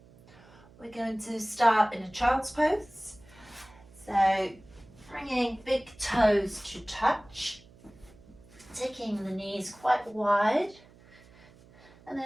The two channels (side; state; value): right; noise; hum, 25 dB below the sound